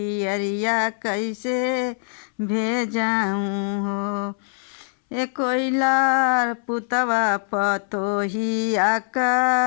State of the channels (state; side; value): silent; right; 63 dB below the other